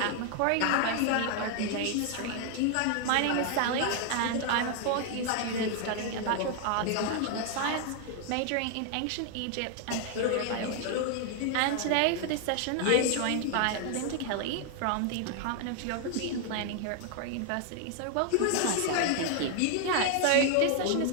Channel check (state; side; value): different; both; correlation 0.00